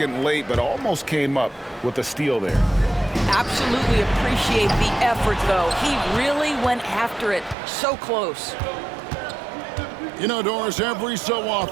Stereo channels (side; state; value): left; drops out; at 7.6 s